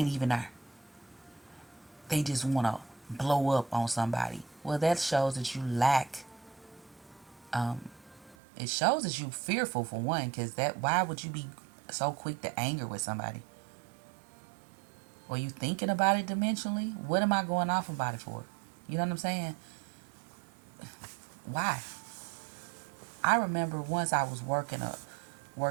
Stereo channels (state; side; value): drops out; left; at 8.3 s